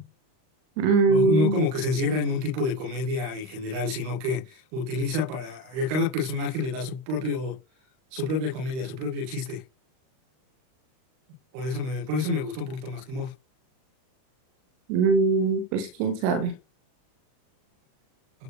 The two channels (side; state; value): left; late; 39 ms